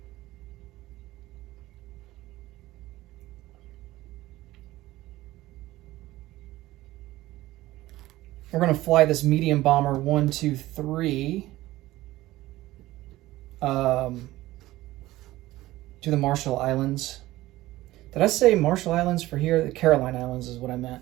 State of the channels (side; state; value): left; quieter; 17.0 dB